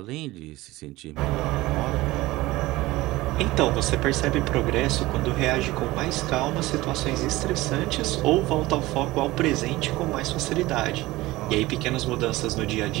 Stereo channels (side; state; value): left; quieter; 18.9 dB